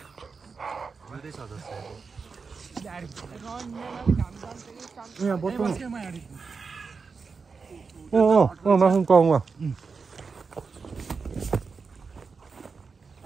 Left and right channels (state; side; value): quieter; left; 5.0 dB